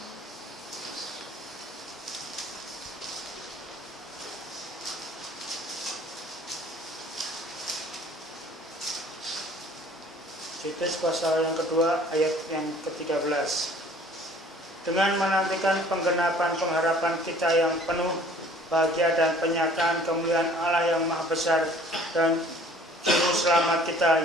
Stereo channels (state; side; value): normal; both; correlation 0.53